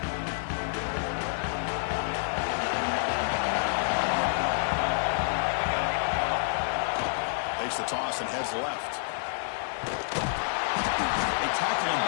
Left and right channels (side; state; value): right; silent; digital silence